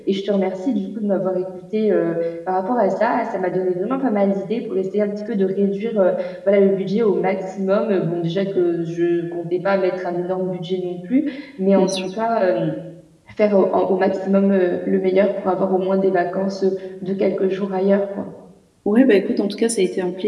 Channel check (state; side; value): identical; both; correlation 1.00